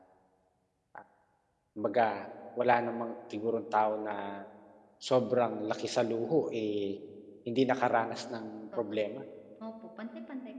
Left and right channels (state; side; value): identical; both; correlation 1.00